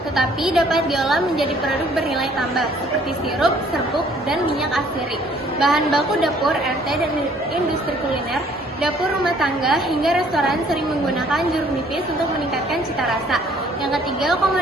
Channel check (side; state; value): both; normal; correlation 0.59